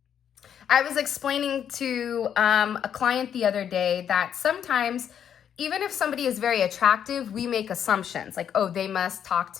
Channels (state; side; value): quieter; right; 8.8 dB